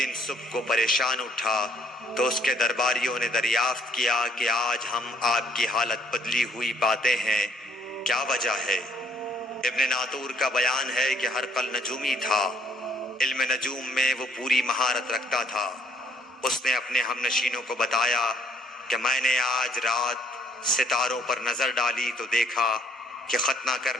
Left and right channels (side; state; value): both; normal; correlation 0.64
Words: صبح کو پریشان اٹھا تو اس کے درباریوں نے دریافت کیا کہ آج ہم آپ کی حالت بدلی ہوئی پاتے ہیں، کیا وجہ ہے؟ ابن ناطور کا بیان ہے کہ ہرقل نجومی تھا، علم نجوم میں وہ پوری مہارت رکھتا تھا۔ اس نے اپنے ہم نشینوں کو بتایا کہ میں نے آج رات ستاروں پر نظر ڈالی تو دیکھا کہ ختنہ